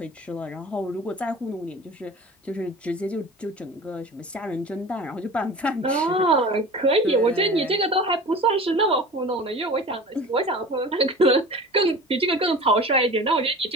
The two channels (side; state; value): both; normal; correlation 0.38